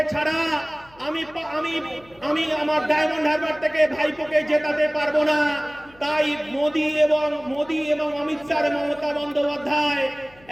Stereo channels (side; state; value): left; noise; hum, 27 dB below the sound